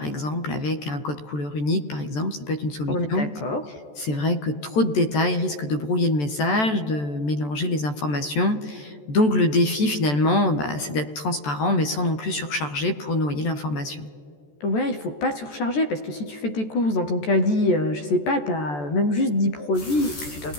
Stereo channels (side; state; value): right; late; 14 ms